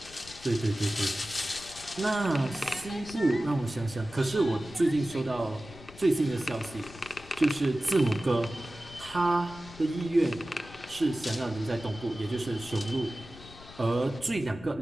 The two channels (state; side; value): noise; left; rumble, 18 dB below the sound